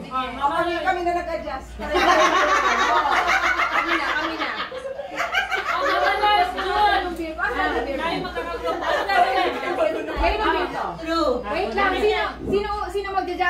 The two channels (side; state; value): both; identical; correlation 1.00